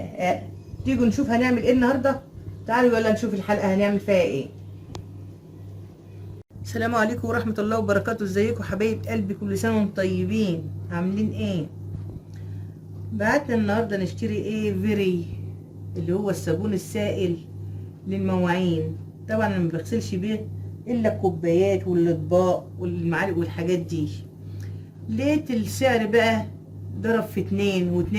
تيجوا نشوف هنعمل ايه النهاردة. تعالوا يلا نشوف الحلقة هنعمل فيها ايه. السلام عليكم ورحمة الله وبركاته. ازيكم حبايب قلبي؟ كل سنة وانتم طيبين. عاملين ايه؟ بعتنا النهاردة نشتري ايه؟ فيري، اللي هو الصابون السائل للمواعين. طبعا انا ما بغسلش بيه الا الكوبايات والاطباق والمعالق والحاجات دي. لقيت السعر بقى ضرب في 2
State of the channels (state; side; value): identical; both; correlation 1.00